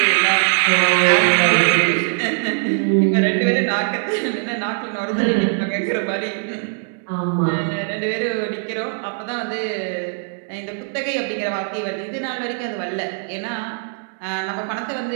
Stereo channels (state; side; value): silent; left; 57 dB below the other